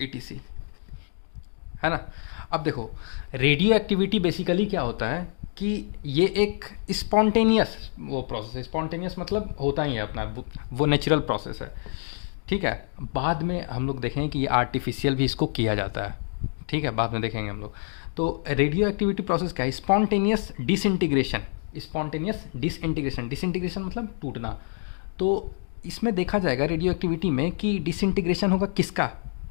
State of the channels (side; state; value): right; silent; 60 dB below the other